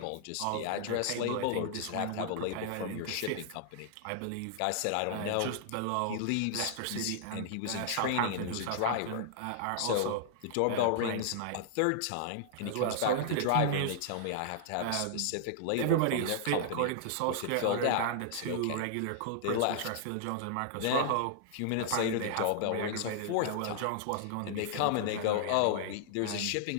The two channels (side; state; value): both; different; correlation -0.01